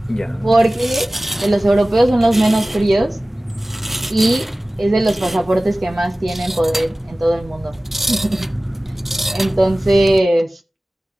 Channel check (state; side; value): normal; both; correlation 0.97